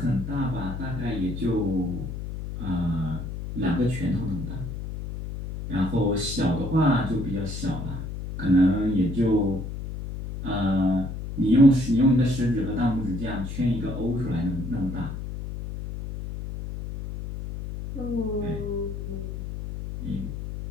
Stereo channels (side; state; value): left; noise; hum, 7 dB below the sound